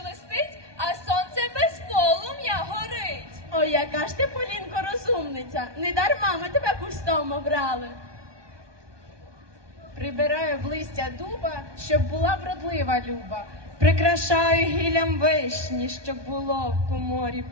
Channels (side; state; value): left; late; 1.2 ms